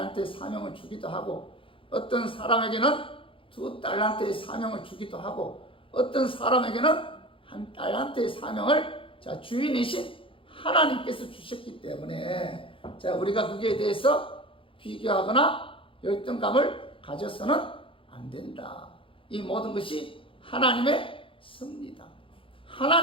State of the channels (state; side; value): late; right; 0.25 ms